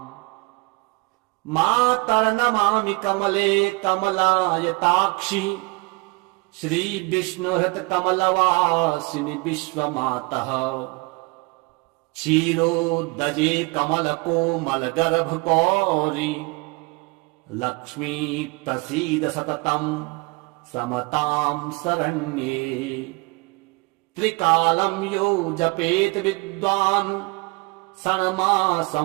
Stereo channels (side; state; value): left; quieter; 27.2 dB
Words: मातर्नमामि कमले कमलायताक्षि श्रीविष्णुहृतकमलवासिनि विश्वमातः क्षीरोदजे कमलकोमलगर्भगौरि लक्ष्मी प्रसीद सततं समतां शरण्ये त्रिकालं यो जपेत विद्वान्